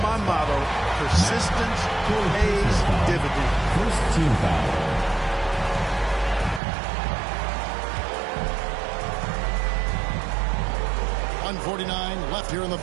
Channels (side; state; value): left; drops out; at 6.6 s